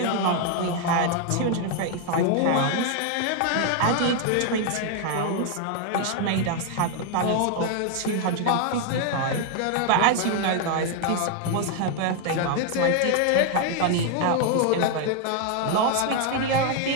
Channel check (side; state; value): both; different; correlation 0.00